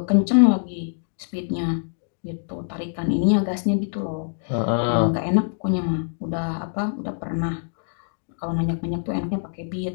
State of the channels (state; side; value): silent; right; digital silence